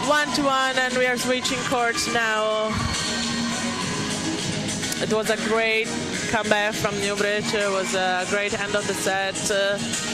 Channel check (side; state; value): both; identical; correlation 1.00